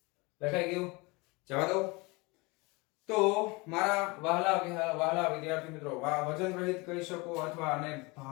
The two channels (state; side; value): quieter; right; 25.9 dB